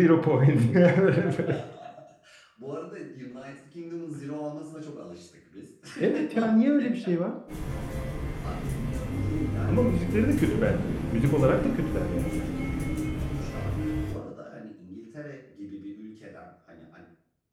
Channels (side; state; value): both; identical; correlation 1.00